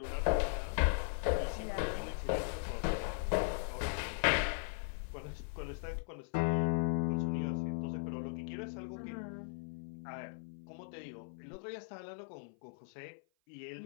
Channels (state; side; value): silent; right; 52 dB below the other